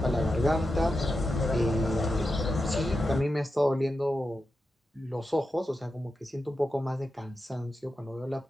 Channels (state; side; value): normal; both; correlation 0.89